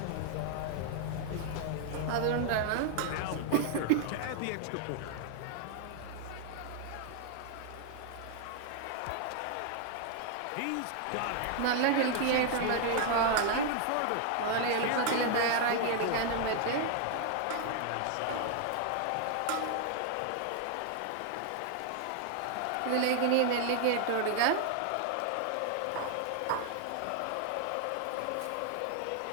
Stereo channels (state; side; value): different; both; correlation 0.00